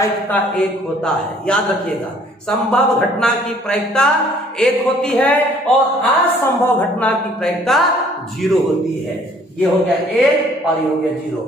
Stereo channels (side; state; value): both; normal; correlation 0.58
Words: 1 होता है, याद रखिएगा। संभव घटना की प्रायिकता 1 होती है और असंभव घटना की प्रायिकता 0 होती है। ये हो गया 1 और ये हो गया 0।